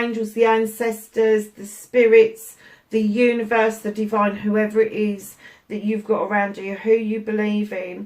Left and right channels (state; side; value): identical; both; correlation 1.00